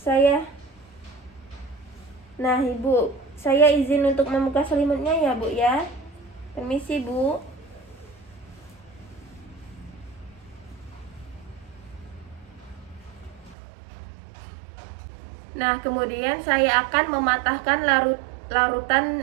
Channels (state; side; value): drops out; left; at 13.6 s